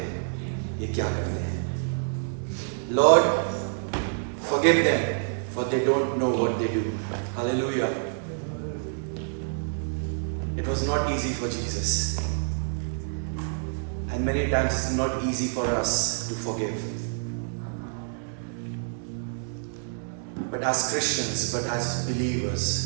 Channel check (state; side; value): silent; left; digital silence